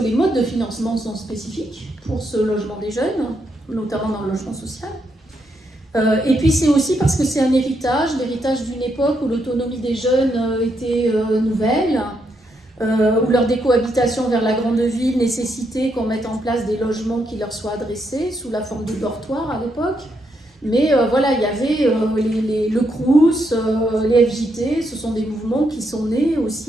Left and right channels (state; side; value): normal; both; correlation 0.79